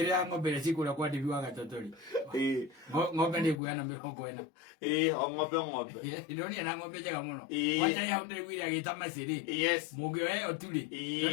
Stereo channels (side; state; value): right; drops out; at 3.6 s